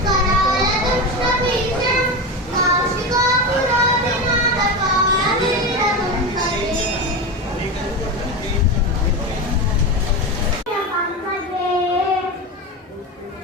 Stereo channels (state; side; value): normal; both; correlation 0.20